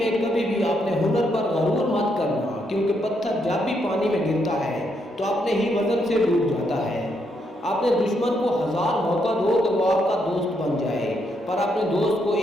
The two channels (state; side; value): normal; both; correlation 0.77